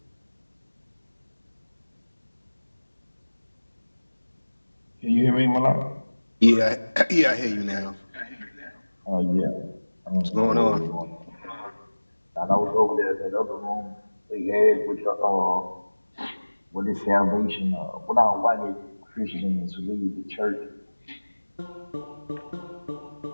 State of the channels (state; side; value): inverted; both; correlation -1.00